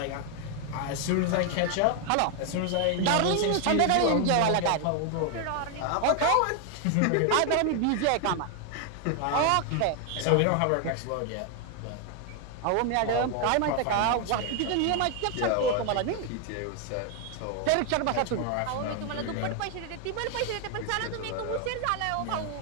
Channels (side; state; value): both; different; correlation 0.00